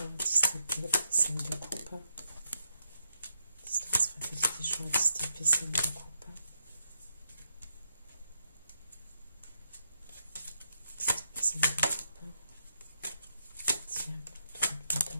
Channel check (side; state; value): both; inverted; correlation -0.81